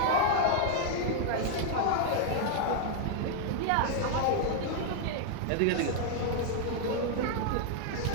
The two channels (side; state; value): both; different; correlation -0.01